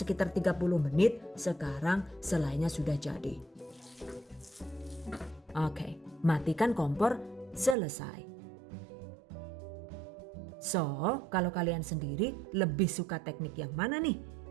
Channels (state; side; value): drops out; left; at 7.8 s